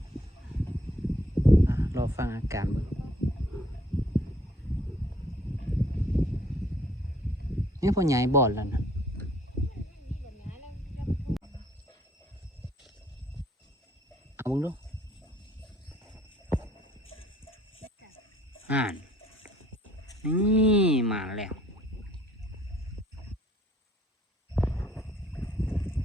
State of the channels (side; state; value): both; normal; correlation 0.61